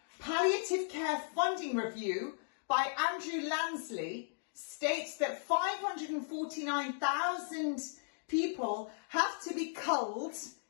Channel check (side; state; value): right; silent; digital silence